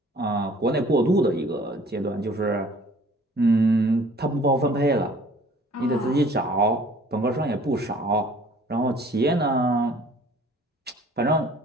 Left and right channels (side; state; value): both; normal; correlation 0.52